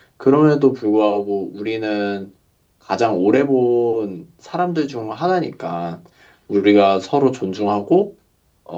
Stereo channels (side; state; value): both; identical; correlation 1.00